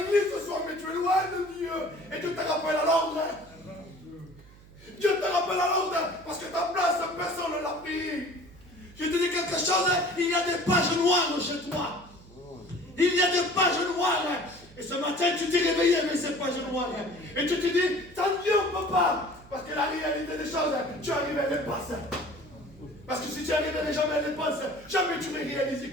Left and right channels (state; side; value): noise; right; hum, 23 dB below the sound